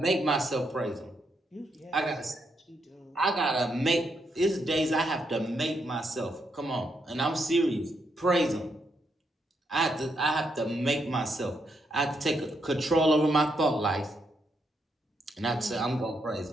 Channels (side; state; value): both; normal; correlation 0.79